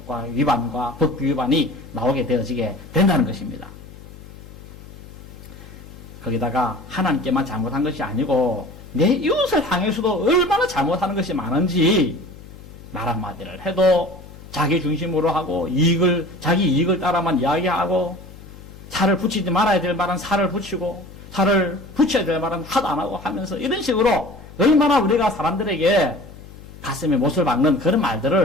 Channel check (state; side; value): noise; left; hum, 18 dB below the sound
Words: 위반과 법규 위반이 나오게 되어지게 된다는 것입니다. 거기다가 하나님께만 잘못한 것이 아니고 내 이웃을 향해서도 얼마나 잘못하는 것이 많은지 말 한마디를 해도 자기 중심으로 하고 자기 이익을 따라만 이야기하고 살을 붙이지 말아야 될 말은 살을 붙이고 살을 붙여야 될 말은 하도 안 하고 하면서 이런 식으로 얼마나 우리가 사람들에게 가슴에 못을 박는 그런